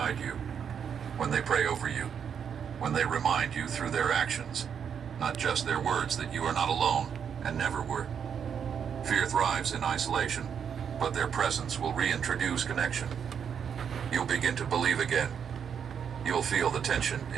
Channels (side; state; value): left; quieter; 7.6 dB